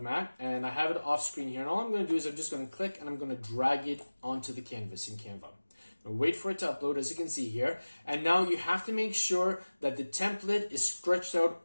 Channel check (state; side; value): inverted; both; correlation -1.00